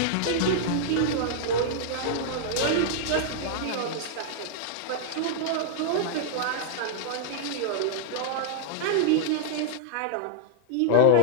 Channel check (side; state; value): both; different; correlation -0.01